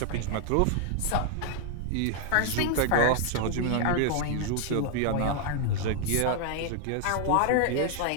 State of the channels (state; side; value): different; both; correlation 0.00